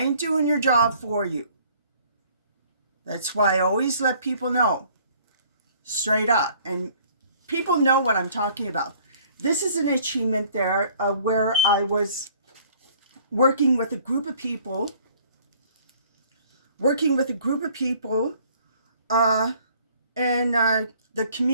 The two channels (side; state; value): both; inverted; correlation -0.56